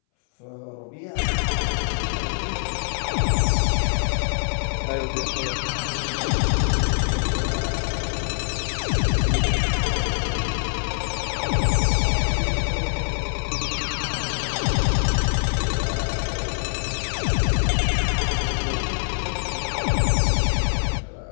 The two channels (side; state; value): right; silent; 61 dB below the other